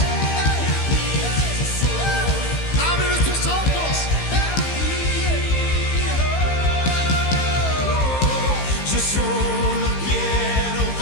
Abre nuestros ojos. Yo solo quiero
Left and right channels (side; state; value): right; late; 15 ms